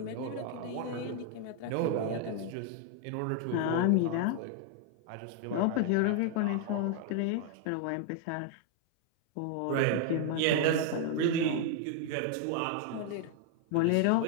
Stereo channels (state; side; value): different; both; correlation 0.00